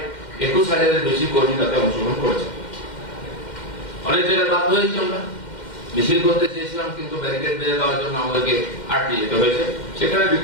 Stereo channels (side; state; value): right; late; 2.1 ms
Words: 21,000-এর বেশি কর্মী তাতে অংশগ্রহণ করেছে। অনেক জায়গায় বাধ্য হয়েছি, আমরা মিছিল করতে চেয়েছিলাম, কিন্তু ব্যারিকেড বেঁধে দেওয়ার জন্য আমাদেরকে আটকে যেতে হয়েছে, সেখানে